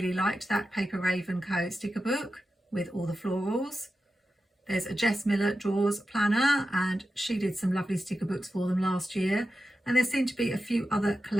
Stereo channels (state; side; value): normal; both; correlation 0.91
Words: liked that Paper Raven Co sticker book with all the florals. There's a Jess Miller Drawers planner, and she did some lovely sticker books for them last year, and there seem to be a few other